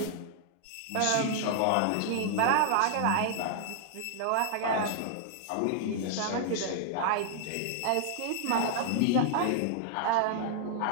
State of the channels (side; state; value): both; different; correlation 0.00